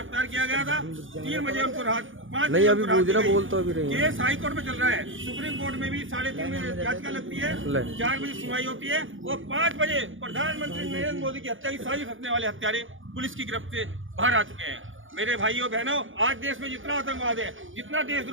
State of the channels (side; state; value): left; late; 0.57 ms